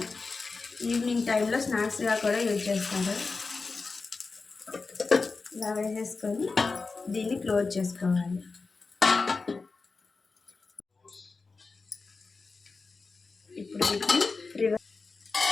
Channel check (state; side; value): quieter; right; 4.1 dB